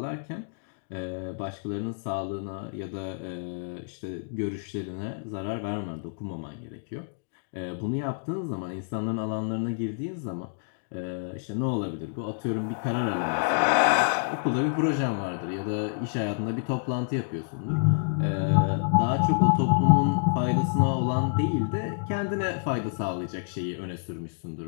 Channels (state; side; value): silent; right; digital silence